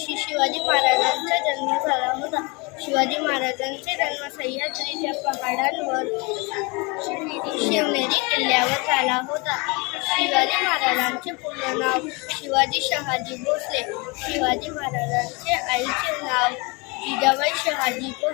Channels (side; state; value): right; quieter; 28.1 dB